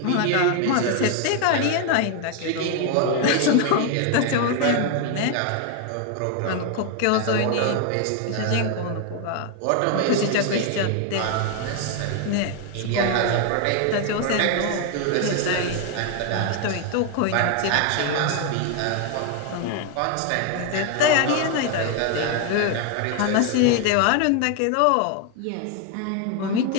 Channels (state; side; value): different; both; correlation 0.01